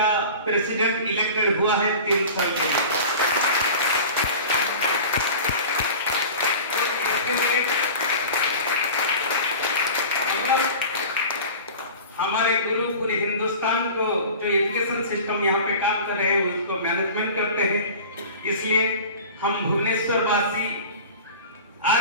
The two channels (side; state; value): both; inverted; correlation -0.37